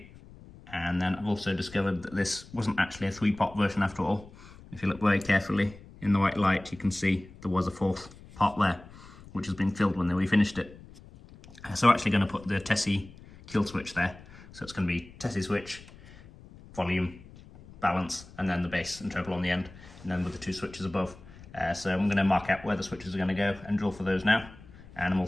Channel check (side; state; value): left; noise; rumble, 20 dB below the sound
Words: and then I've also discovered that this wasn't actually a 3-pot version after all. If you look very carefully in the white light, you can see there was a 4th pot there, which has been filled when they refinished it. So we're actually going to put the Tessie kill switch there. So it's going to be Tessie switch, volume, balance, and then the bass and treble on the end, and then with the two switches above. So I'm going to mark out where the switches are going to go and drill for those now, and I'm